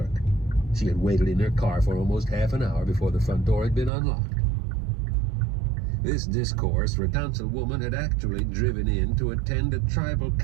She had waited in her car for almost half an hour before the front door had been unlocked. This discourse for councilwoman had actually driven in to attend a tribal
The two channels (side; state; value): left; drops out; at 3.9 s